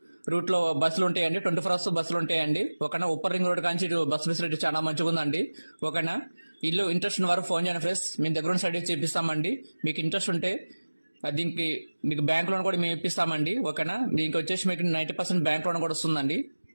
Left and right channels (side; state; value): both; inverted; correlation -1.00